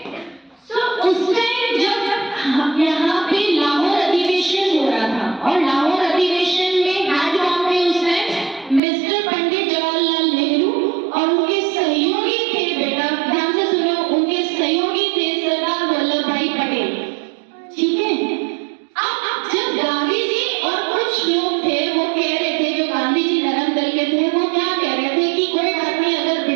So उस टाइम जब यहाँ पे लाहौर अधिवेशन हो रहा था और लाहौर अधिवेशन में हेड कौन थे उस टाइम? मिस्टर पंडित जवाहरलाल नेहरू और उनके सहयोगी थे, बेटा ध्यान से सुनो, उनके सहयोगी थे सरदार वल्लभ भाई पटेल. ठीक है? अब जब गांधी जी और कुछ लोग थे वो कह रहे थे, जो गांधी जी नरम दल के थे, वो क्या कह रहे थे कि कोई बात नहीं, अगर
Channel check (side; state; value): left; drops out; at 8.8 s